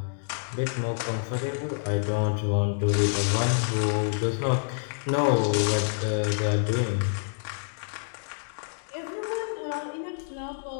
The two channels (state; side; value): silent; right; digital silence